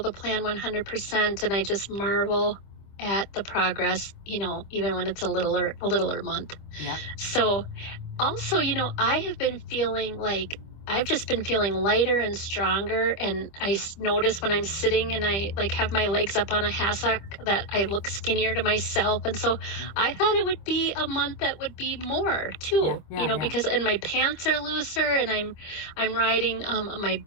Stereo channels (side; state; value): right; late; 25 ms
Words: plan 100% and I just marvel at the progress, even when it's a littler month. Yeah. So also, I have been feeling like I've just been feeling lighter and stronger. And I notice when I'm sitting and I like have my legs up on a hassock that I look skinnier to myself. And so I thought it would be a month that would be more too, because and my pants are looser and I'm riding my